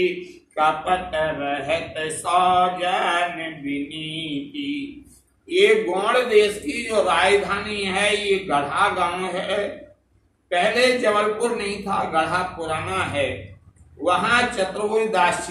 कपट रहत सौजन विनीति। ये गौड़ देश की जो राजधानी है, ये गढ़ा गांव है। पहले जबलपुर नहीं था, गढ़ा पुराना है। वहां चतुर्भुज दास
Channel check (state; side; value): identical; both; correlation 1.00